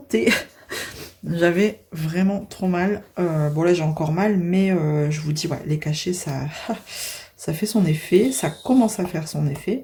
J'avais vraiment trop mal. Bon là j'ai encore mal, mais je vous dis, ouais, les cachets, ça fait son effet. Ça commence à faire son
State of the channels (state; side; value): identical; both; correlation 1.00